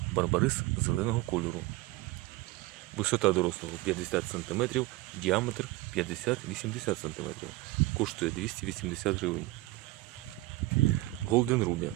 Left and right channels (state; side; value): quieter; left; 19.7 dB